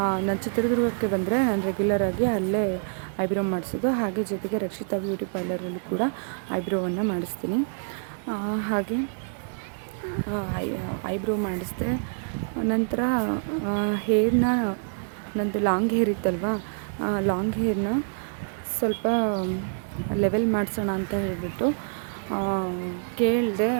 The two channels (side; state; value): left; silent; digital silence